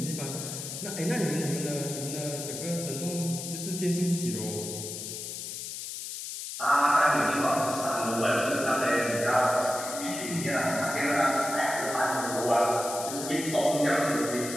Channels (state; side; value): noise; left; hiss, 7 dB below the sound